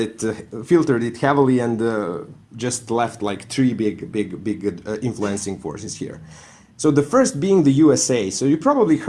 it heavily and just left like three big influencing forces here. So the first being the USA. So you probably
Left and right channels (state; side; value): identical; both; correlation 1.00